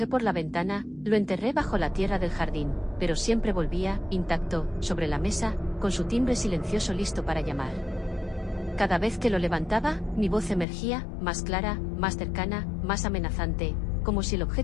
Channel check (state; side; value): drops out; right; at 10.7 s